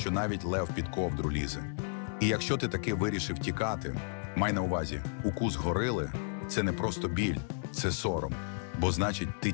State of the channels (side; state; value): right; silent; 56 dB below the other